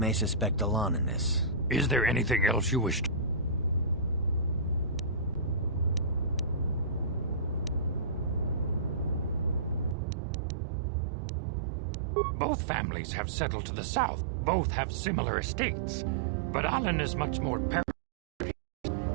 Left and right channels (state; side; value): drops out; left; at 10.0 s